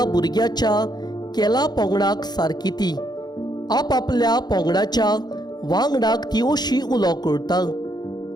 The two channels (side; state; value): right; late; 0.20 ms